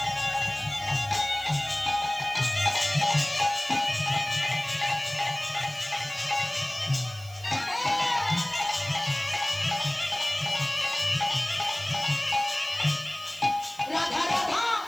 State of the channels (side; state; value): right; noise; hiss, 21 dB below the sound